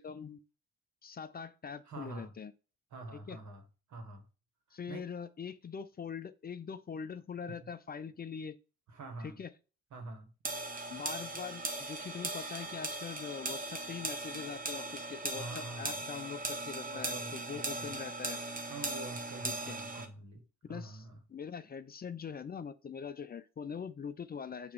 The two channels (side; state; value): both; normal; correlation 0.16